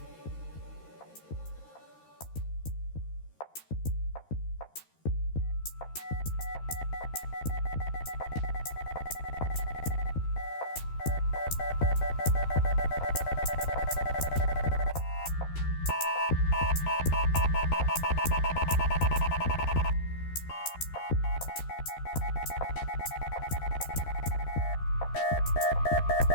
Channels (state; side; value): late; right; 13 ms